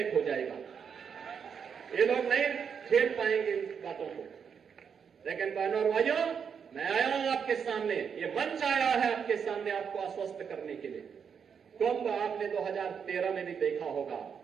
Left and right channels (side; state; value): left; quieter; 6.9 dB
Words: हो जाएगा। ये लोग नहीं झेल पाएंगे इन बातों को। लेकिन बहनों और भाइयों, मैं आया हूं आपके सामने, ये मंच आया है आपके सामने आपको आश्वस्त करने के लिए। कुंभ आपने 2013 में भी देखा होगा